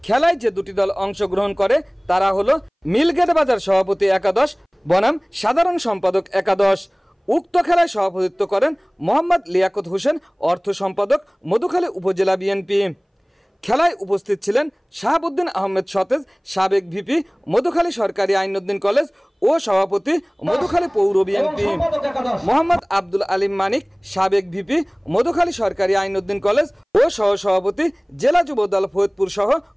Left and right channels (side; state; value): both; identical; correlation 1.00